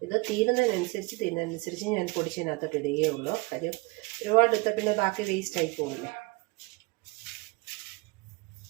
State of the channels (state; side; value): quieter; left; 25.7 dB